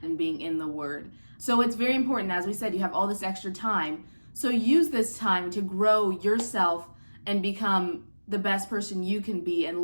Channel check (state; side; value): inverted; both; correlation -1.00